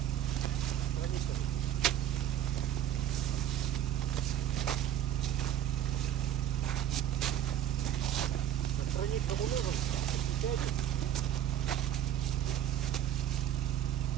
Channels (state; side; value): quieter; left; 10.8 dB